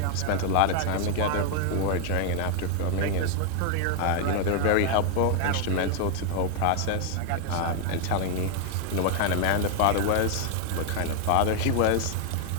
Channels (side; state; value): both; different; correlation 0.00